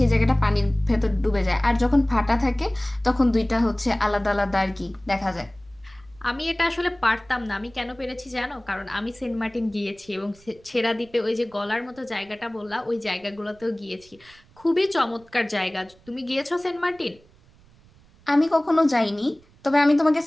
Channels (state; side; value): noise; right; rumble, 28 dB below the sound